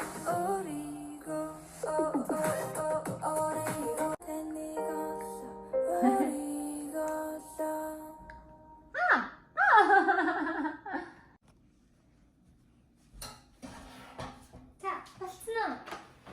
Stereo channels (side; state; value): both; identical; correlation 1.00